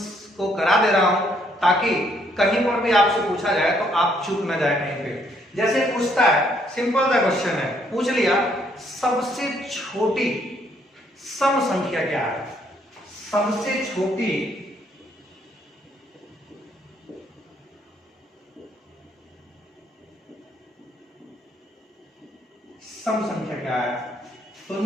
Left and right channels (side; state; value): both; normal; correlation 0.69